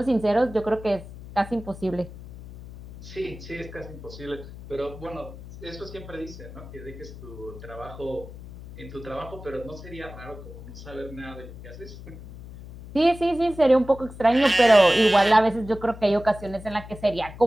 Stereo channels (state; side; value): noise; left; hum, 15 dB below the sound